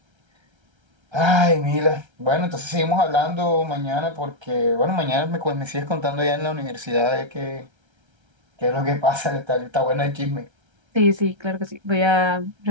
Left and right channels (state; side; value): late; left; 1.3 ms